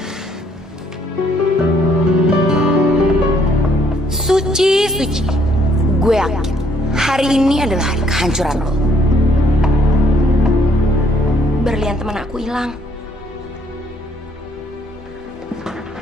Suci. Gue yakin hari ini adalah hari kehancuran lo. Berlian teman aku hilang.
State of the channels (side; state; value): both; normal; correlation 0.66